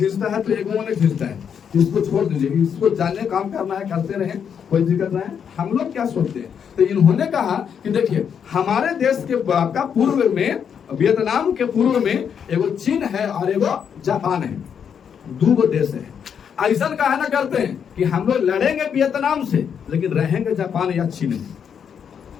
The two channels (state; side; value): quieter; right; 7.6 dB